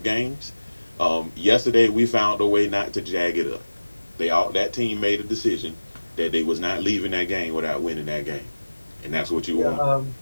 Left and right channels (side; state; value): both; inverted; correlation -1.00